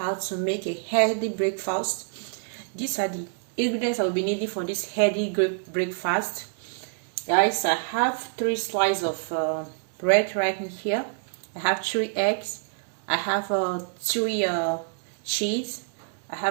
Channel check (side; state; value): left; silent; digital silence